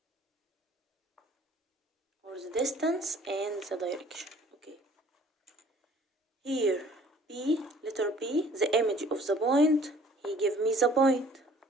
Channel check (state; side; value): normal; both; correlation 0.54